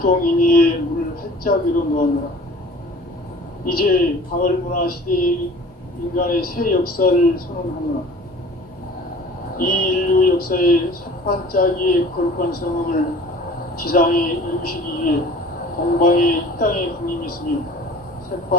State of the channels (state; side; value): normal; both; correlation 0.46